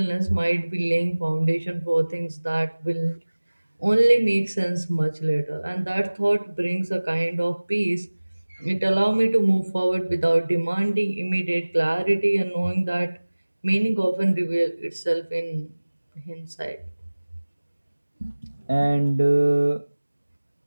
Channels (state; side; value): inverted; both; correlation -1.00